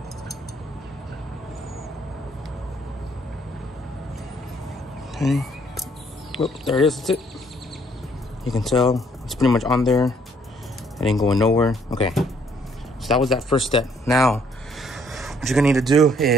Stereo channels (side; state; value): both; normal; correlation 0.65